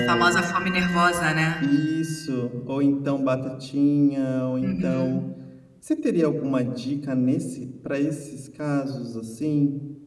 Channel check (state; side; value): identical; both; correlation 1.00